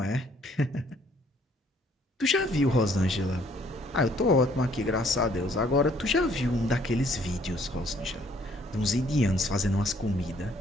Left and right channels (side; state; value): both; normal; correlation 0.63